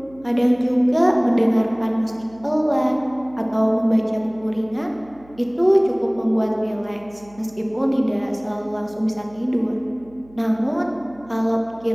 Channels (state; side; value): noise; right; hum, 25 dB below the sound